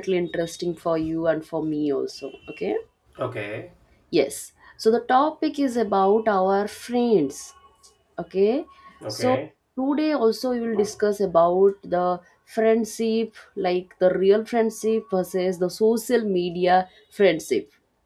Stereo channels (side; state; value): both; identical; correlation 1.00